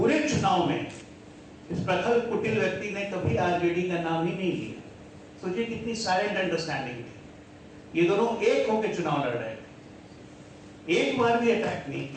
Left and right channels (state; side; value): identical; both; correlation 1.00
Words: चुनाव में इस प्रखर कुटिल व्यक्ति ने कभी आरजेडी का नाम ही नहीं लिया। सोचिए कितनी साइलेंट अंडरस्टैंडिंग थी। ये दोनों एक होकर चुनाव लड़ रहे थे, एक बार भी अटैक नहीं